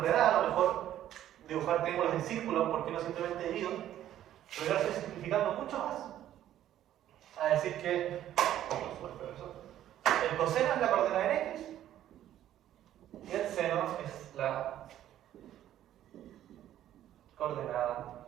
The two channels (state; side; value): quieter; left; 12.0 dB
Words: a lo mejor dibujar triángulos en círculos, porque no simplemente divido, pero yo lo estoy simplificando mucho más. A decir que el coseno es la coordenada en X y el seno es la coordenada